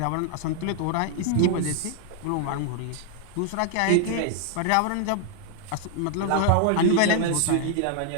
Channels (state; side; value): different; both; correlation 0.00